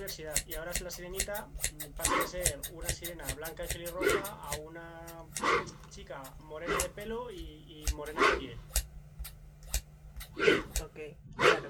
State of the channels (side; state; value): both; identical; correlation 1.00